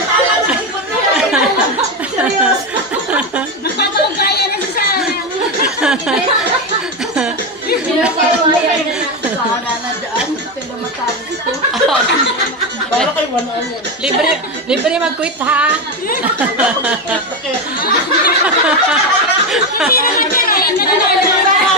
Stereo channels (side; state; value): both; normal; correlation 0.13